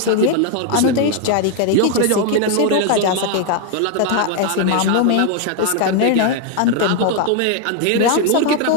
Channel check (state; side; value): different; both; correlation 0.00